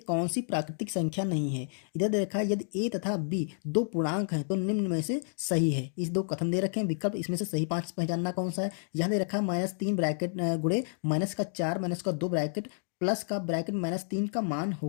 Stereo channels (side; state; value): right; silent; digital silence